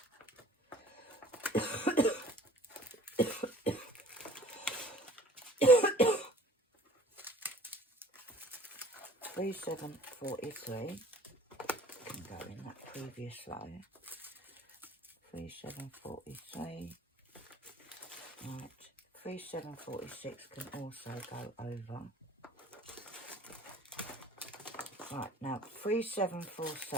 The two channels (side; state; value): both; normal; correlation 0.50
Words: 3743 can go in that previous row. 3743. Right. 3746 can also go over. Right, now